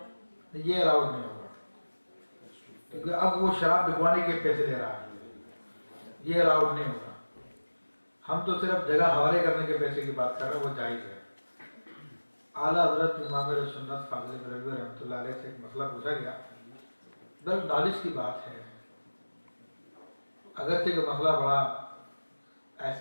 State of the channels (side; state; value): both; inverted; correlation -1.00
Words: یہ الاؤڈ نہیں ہوگا، کیونکہ اب وہ شراب بکوانے کے پیسے لے رہا ہے، یہ الاؤڈ نہیں ہوگا. ہم تو صرف جگہ حوالے کرنے کے پیسے کی بات کر رہے ہیں، وہ جائز ہے. اعلیٰ حضرت امام سنت فاضل بریلوی رحمۃ اللہ علیہ سے ایک مسئلہ پوچھا گیا، بل نالج کی بات ہے، اگرچہ کہ مسئلہ بڑا